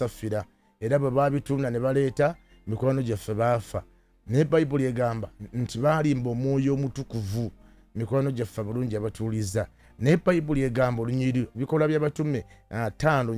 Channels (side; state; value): both; identical; correlation 1.00